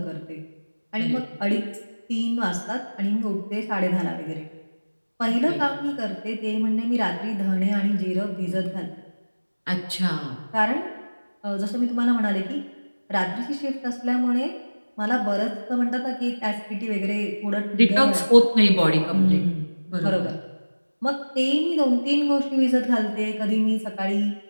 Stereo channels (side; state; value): both; inverted; correlation -1.00